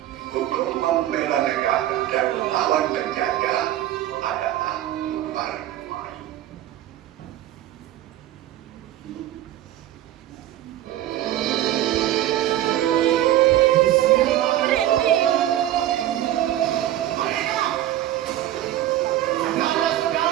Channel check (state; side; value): quieter; left; 13.3 dB